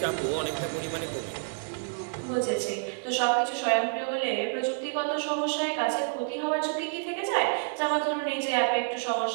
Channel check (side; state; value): left; silent; 59 dB below the other